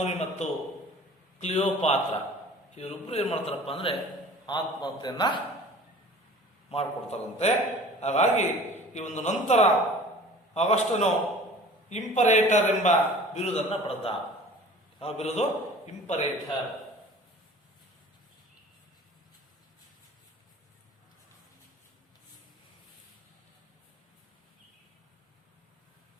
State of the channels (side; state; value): both; normal; correlation 0.44